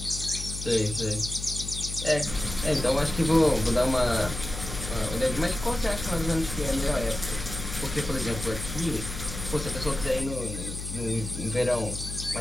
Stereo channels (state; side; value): noise; left; hum, 8 dB below the sound